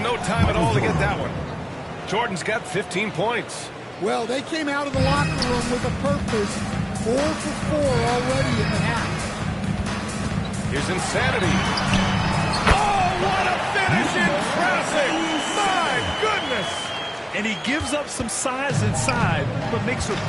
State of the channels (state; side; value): identical; both; correlation 1.00